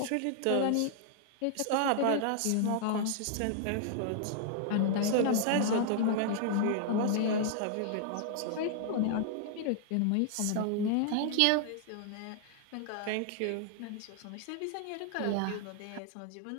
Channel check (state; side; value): different; both; correlation 0.00